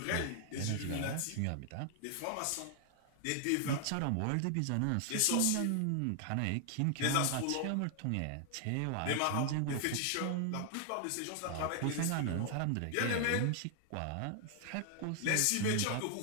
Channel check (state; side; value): different; both; correlation 0.00